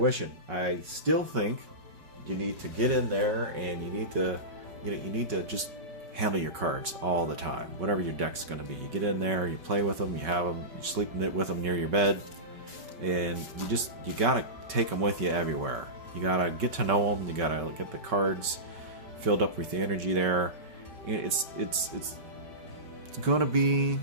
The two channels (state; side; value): late; left; 5.3 ms